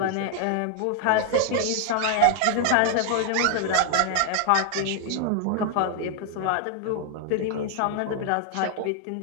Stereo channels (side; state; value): both; different; correlation 0.00